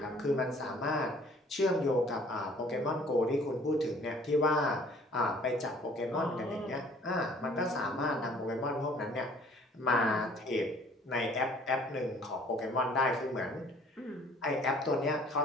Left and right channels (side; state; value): both; normal; correlation 0.55